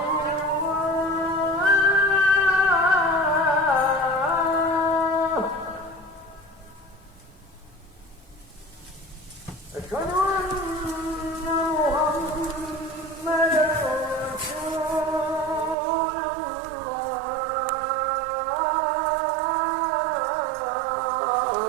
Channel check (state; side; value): drops out; left; at 15.8 s